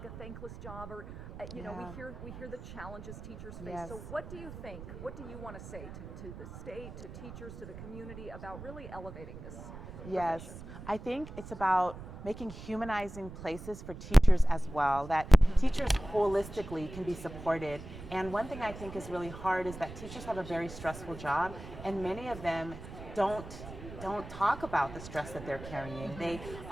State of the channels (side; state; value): right; noise; rumble, 12 dB below the sound